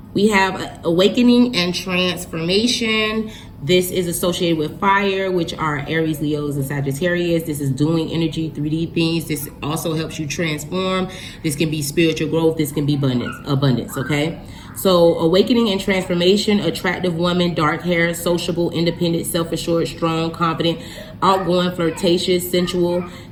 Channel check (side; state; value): both; identical; correlation 1.00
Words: we have awakening and transformation. This is associated with fire, which are Aries, Leos, and Sagittarius. This is doing energy, 3D things. This also helps you transform. This can be spiritual growth. This can be abundance, okay? So awakening and transformation, attractive woman, dark hair, sociable, independent, self-assured, strong, confident, outgoing, flirtatious, sensual,